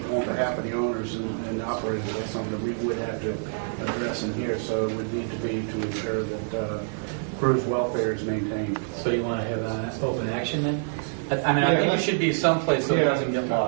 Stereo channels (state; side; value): silent; left; digital silence